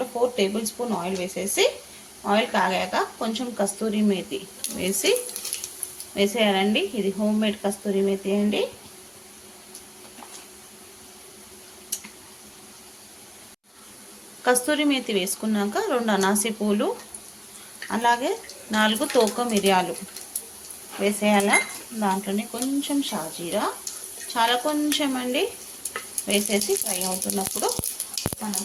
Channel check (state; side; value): identical; both; correlation 1.00